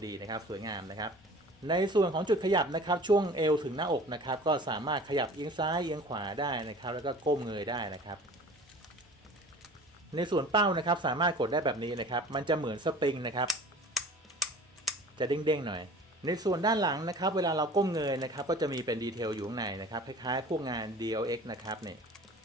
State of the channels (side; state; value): both; normal; correlation 0.43